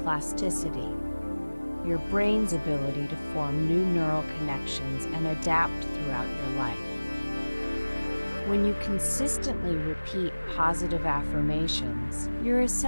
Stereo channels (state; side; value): inverted; both; correlation -1.00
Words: your brain's ability to form new neural connections and adapt throughout your life. When you consistently repeat positive affirmations, you're